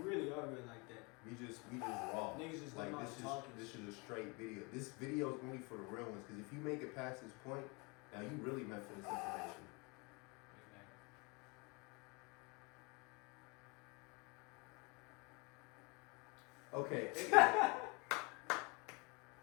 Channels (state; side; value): quieter; right; 28.4 dB